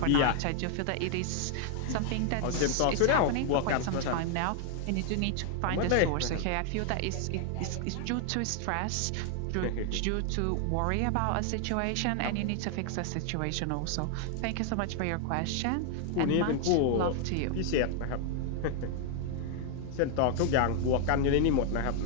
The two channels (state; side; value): different; both; correlation 0.00